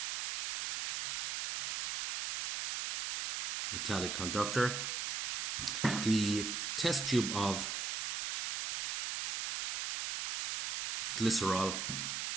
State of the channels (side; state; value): right; noise; hiss, 2 dB below the sound